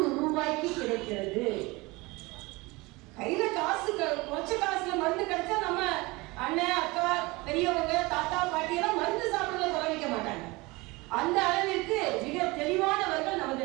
ரூபாய்க்கு கிடைக்கிறது. கையில காசு கொஞ்ச காசுல மருந்து கிடைச்சா நம்ம அண்ணன் அக்கா பெரியவங்க தாத்தா பாட்டி எல்லாம் மருந்து சாப்பிடுறத குறைவிக்க மாட்டாங்க. அந்த அளவிற்கு மிக தெளிவானவர்கள்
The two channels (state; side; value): quieter; left; 23.5 dB